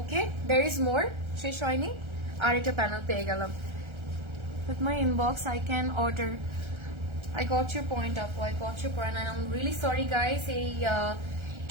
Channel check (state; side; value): late; left; 1.3 ms